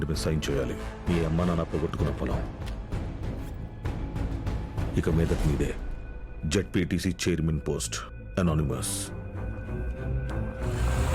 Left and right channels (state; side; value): identical; both; correlation 1.00